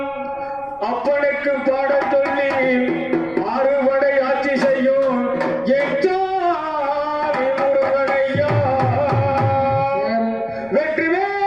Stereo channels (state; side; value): noise; right; rumble, 25 dB below the sound